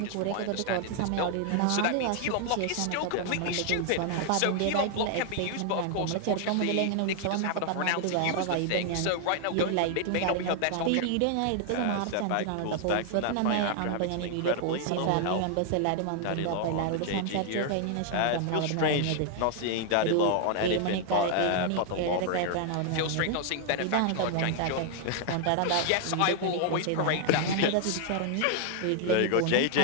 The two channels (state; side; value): different; both; correlation 0.00